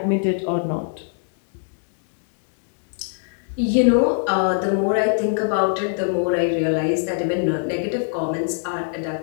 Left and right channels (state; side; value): silent; right; digital silence